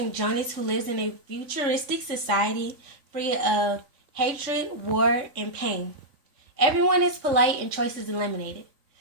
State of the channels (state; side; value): late; left; 3.5 ms